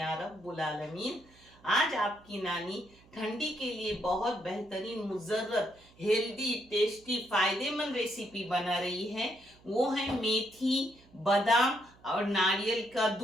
रब्बुल आलमीन। आज आपकी नानी ठंडी के लिए बहुत बेहतरीन, मुजर्रत, हेल्दी, टेस्टी, फायदेमंद रेसिपी बना रही है। वो है मेथी, बादाम और नारियल का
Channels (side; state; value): right; noise; hum, 27 dB below the sound